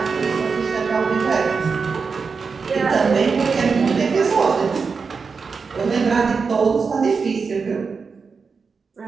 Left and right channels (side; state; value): left; quieter; 5.1 dB